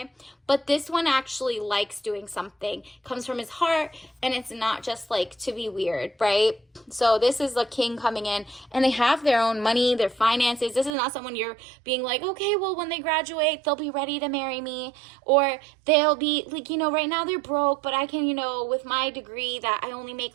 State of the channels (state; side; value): drops out; left; at 11.0 s